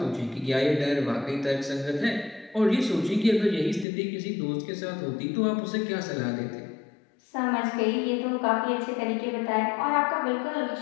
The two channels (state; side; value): drops out; right; at 3.9 s